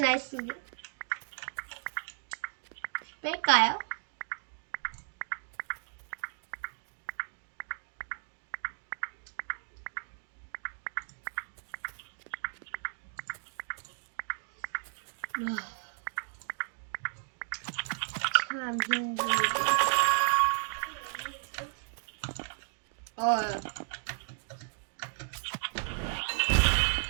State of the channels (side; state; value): left; silent; digital silence